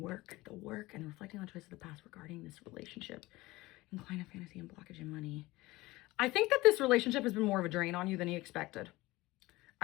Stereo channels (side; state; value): right; quieter; 19.9 dB